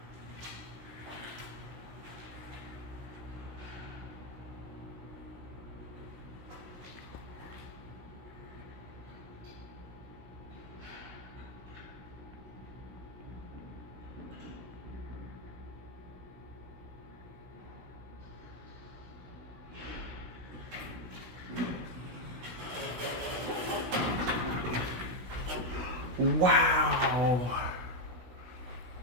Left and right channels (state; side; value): late; left; 16 ms